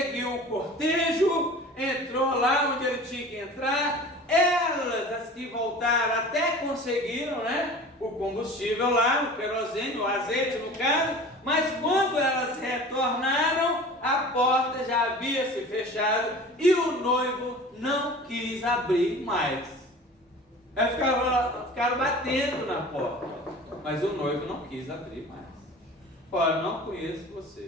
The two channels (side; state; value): both; normal; correlation 0.40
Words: o cortejo, entrou lá onde ele tinha que entrar. Elas, as que voltaram, até conseguiram, né, o combustível lá, o querosene, o azeite no caso, mas quando elas retornaram, a porta já havia se fechado e o noivo não quis abrir mais. Elas ficaram batendo na porta, mas o noivo não quis abrir mais. Olha, não conheço